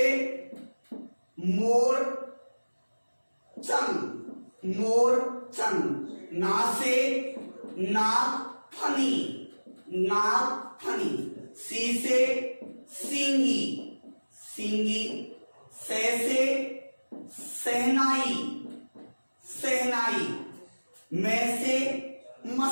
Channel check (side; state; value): both; inverted; correlation -1.00